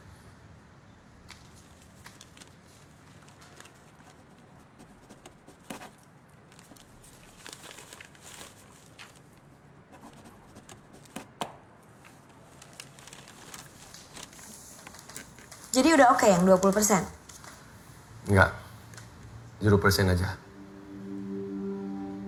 Jadi udah oke yang 20%? Enggak. 0% aja.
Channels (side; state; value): both; identical; correlation 1.00